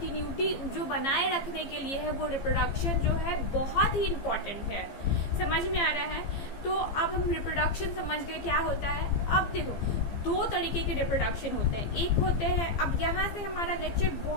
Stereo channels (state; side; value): late; right; 15 ms